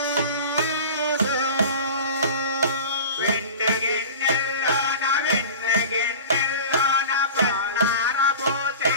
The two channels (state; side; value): inverted; both; correlation -0.36